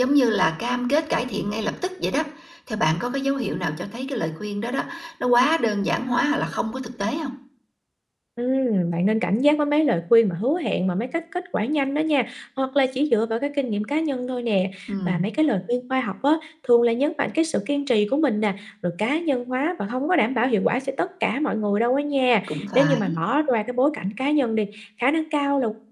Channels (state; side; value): identical; both; correlation 1.00